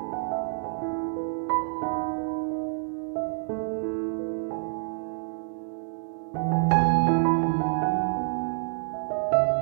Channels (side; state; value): left; silent; digital silence